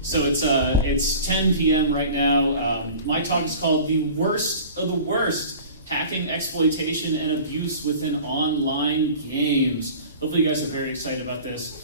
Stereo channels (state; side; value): inverted; both; correlation -0.41